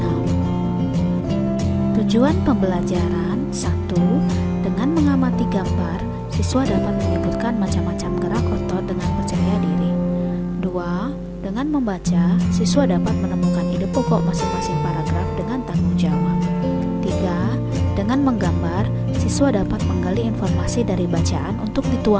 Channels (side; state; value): both; identical; correlation 1.00